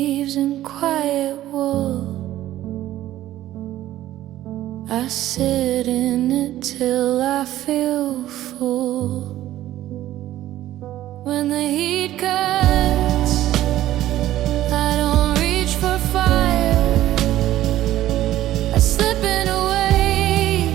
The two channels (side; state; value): left; quieter; 13.9 dB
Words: and quiet wool. I sit in it till I feel full. When the heat cuts, I don't reach for fire. I slip in a